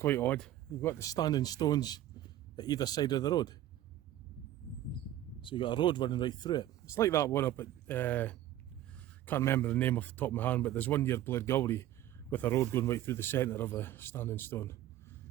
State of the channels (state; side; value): quieter; left; 12.9 dB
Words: odd. You've got the standing stones at either side of the road. So you've got a road running right through it. It's like that one up at, can't remember the name off the top of my hand, but there's one near Breakaway with a road going right through the centre of a standing stone.